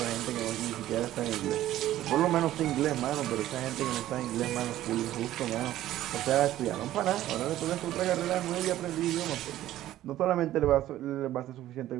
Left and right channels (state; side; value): quieter; left; 13.7 dB